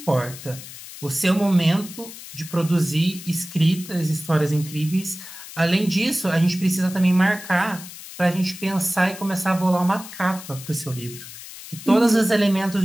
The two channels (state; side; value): noise; left; hiss, 14 dB below the sound